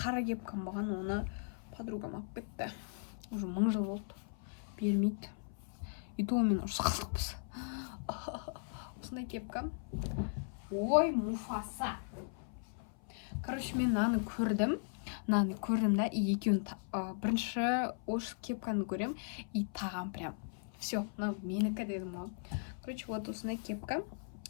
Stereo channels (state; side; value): silent; right; 53 dB below the other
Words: кепкам болған, оны подругам алып кетті. Уже 1000 жыл болды. Бермейді. И то мен ұрыс қалдықпыз. Осындай кепка. Ой, Муфаса. Мен наны көрдім. Да, и екеуін бірінші осы кепканы көрем, и тағам прям. Все, менікі дедім ғой. Вот осындай кепка.